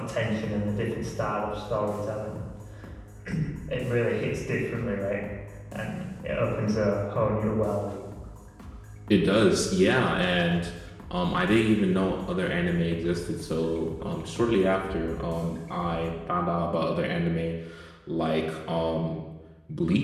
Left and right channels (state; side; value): identical; both; correlation 1.00